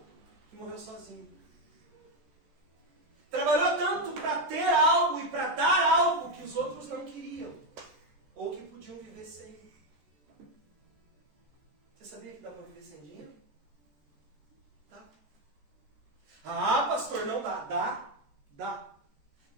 que morreu sozinho. Trabalhou tanto para ter algo e para dar algo que os outros não queriam. Ou que podiam viver sem. Você sabia que dá para viver sem dinheiro? Dá. Ah, pastor, não dá. Dá.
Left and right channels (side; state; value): left; late; 14 ms